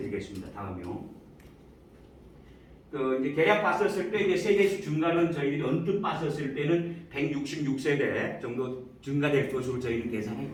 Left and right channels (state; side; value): identical; both; correlation 1.00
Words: 되겠습니다. 다음이요. 이제 계략 봤었을 때 이제 세대수 증가는 저희들이 언뜻 봤었을 때는 166세대 정도 증가될 것으로 저희는